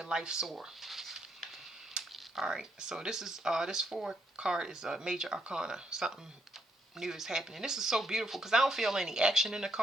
life soar. All right, so this is this 4 card is a major arcana. Something new is happening. This is so beautiful because I don't feel any action in the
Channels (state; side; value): normal; both; correlation 0.76